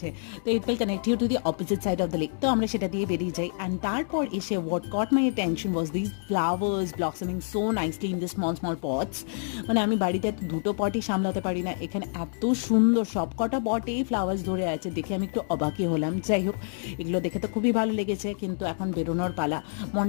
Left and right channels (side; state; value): right; silent; digital silence